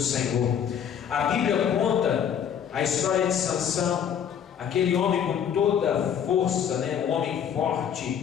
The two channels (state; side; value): quieter; right; 8.4 dB